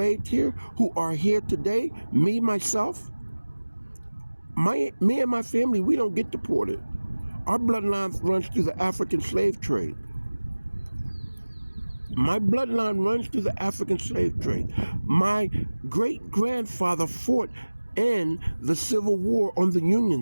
here, who are here today, me, myself, me and my family, we don't get deported. Our bloodline runs through the African slave trade. My bloodline runs through the African slave trade. My great-grandfather fought in the Civil War on the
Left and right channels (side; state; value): both; inverted; correlation -1.00